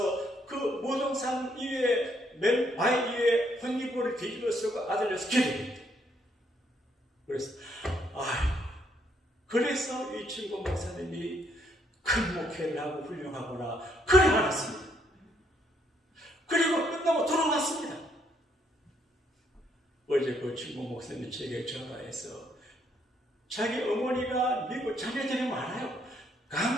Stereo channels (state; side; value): normal; both; correlation 0.71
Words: 그 무등산 위에 맨 바위 위에 혼이불을 뒤집어 쓰고 아들려서 기도했대. 그래서 이 친구 목사님이 큰 목회를 하고 훌륭하구나 그래 알았습니다. 그리고 끝나고 돌아왔습니다. 어제 그 친구 목사님이 제게 전화해서 자기 어머니가 미국 자녀들이 많아요.